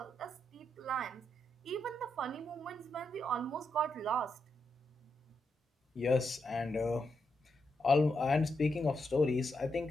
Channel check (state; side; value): normal; both; correlation 0.83